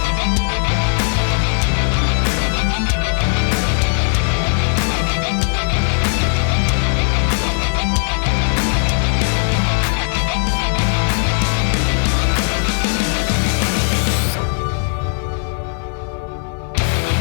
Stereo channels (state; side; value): silent; right; 64 dB below the other